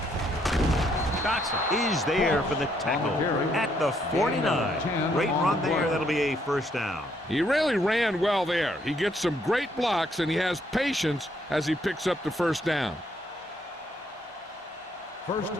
Dotson is there for the tackle at the 49. Great run there. That'll be a first down. He really ran well there. He gets some great blocks, and he has patience as he picks up the first down. 1st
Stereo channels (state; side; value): normal; both; correlation 0.71